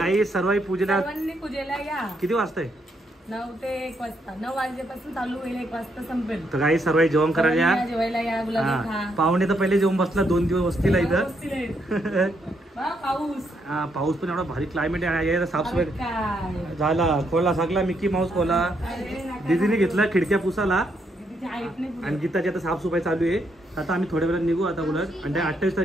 सर्व पूजेला पूजेला या. किती वाजता आहे. 9 ते 1 वाजता 9 वाजल्यापासून चालू होईल 1 वाजता संपेल. तर काही सर्व जेवण करायला या. जेवायला या गुलाबी खा. पाहुणे तर पहिले जेवण बसला 2 दिवस वस्तीला इथं. पाऊस पाऊस पण एवढा भारी क्लायमेट आहे. साफसफाई झाला. खोला सगळा मिकी माऊस खोला दीदीने घेतला खिडक्या पुसाला आणि गीताची आता साफसफाई चालू आहे. आता आम्ही थोड्या वेळात निघू आता उलट आणि 28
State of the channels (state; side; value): normal; both; correlation 0.76